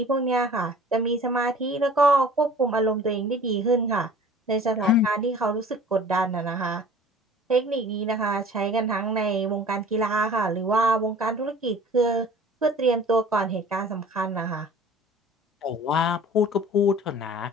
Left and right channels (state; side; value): normal; both; correlation 0.46